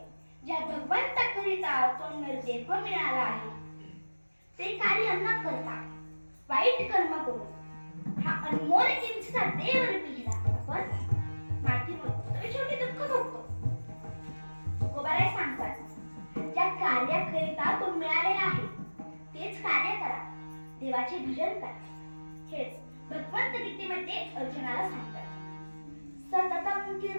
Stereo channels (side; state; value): both; inverted; correlation -1.00